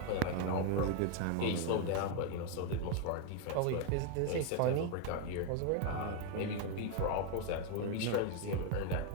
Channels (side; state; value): both; different; correlation 0.01